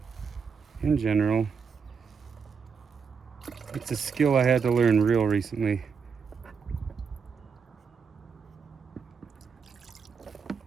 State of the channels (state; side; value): quieter; left; 5.9 dB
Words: in general, it's a skill I had to learn real recently.